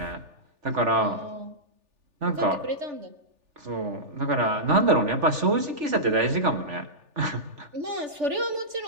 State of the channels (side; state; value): left; late; 3.4 ms